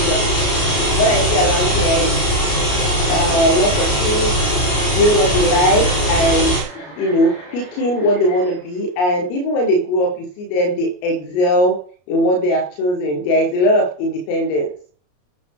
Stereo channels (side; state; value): right; late; 33 ms